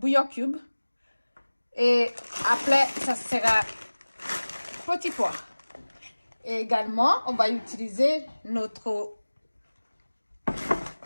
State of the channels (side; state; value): both; inverted; correlation -1.00